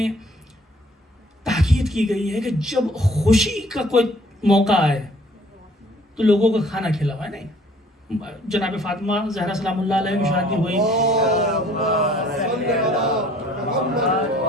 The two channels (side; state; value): both; normal; correlation 0.56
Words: تاکید کی گئی ہے کہ جب خوشی کا کوئی موقع آئے تو لوگوں کو کھانا کھلاوائے. نہیں، جناب فاطمہ زہرا سلام اللہ علیہ کی شادی ہوئی،